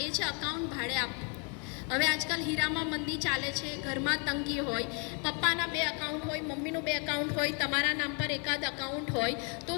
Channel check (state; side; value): quieter; right; 37.2 dB